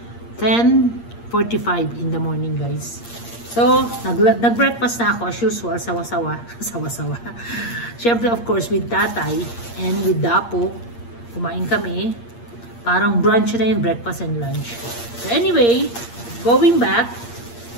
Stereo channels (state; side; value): late; right; 8.6 ms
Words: 10:45 in the morning, guys. So, nag-breakfast na ako as usual, sawa-sawa. Sawa-sawa. Siyempre, of course, with tatay and with Dapo, kumain kami. Parang brunch na yun, breakfast and lunch. So anyway, going back,